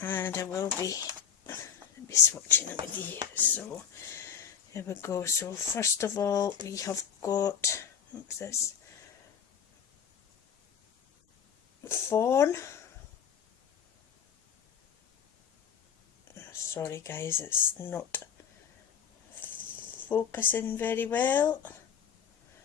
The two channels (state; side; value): quieter; right; 7.9 dB